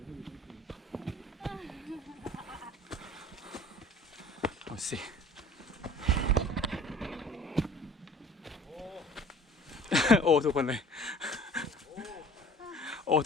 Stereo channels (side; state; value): both; normal; correlation 0.48